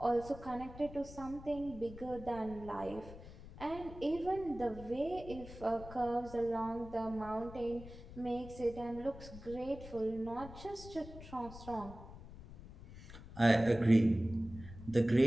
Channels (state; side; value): noise; left; rumble, 15 dB below the sound